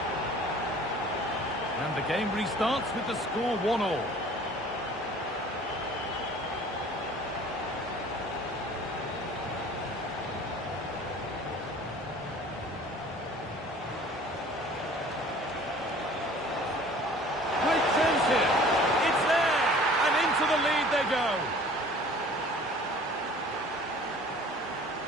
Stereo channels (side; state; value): both; normal; correlation 0.48